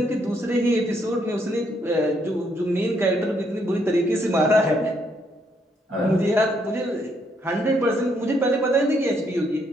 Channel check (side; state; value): both; normal; correlation 0.73